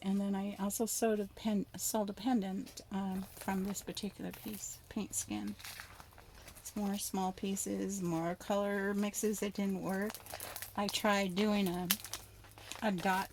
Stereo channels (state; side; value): identical; both; correlation 1.00